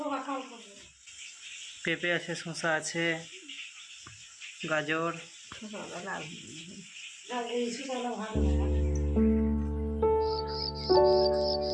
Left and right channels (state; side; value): identical; both; correlation 1.00